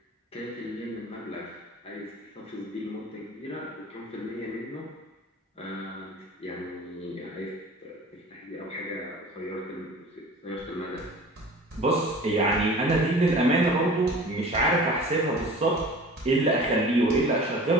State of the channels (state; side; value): normal; both; correlation 0.41